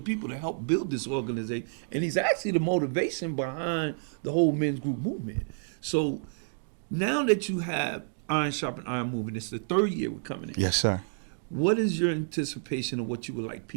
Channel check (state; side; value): silent; left; digital silence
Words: that helped build this organization, and he's actually the motivation behind the whole Men's Group movement. So now that you have Iron Sharpen Iron movement, it's the third year we're coming in. Yes, sir. What is your anticipation of what you would like